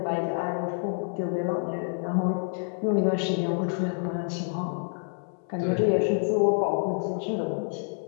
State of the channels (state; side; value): silent; right; 56 dB below the other